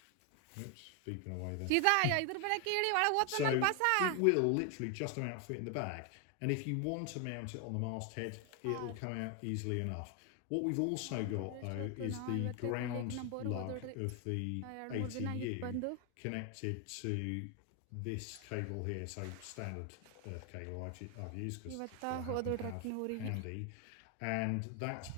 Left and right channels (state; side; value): different; both; correlation 0.01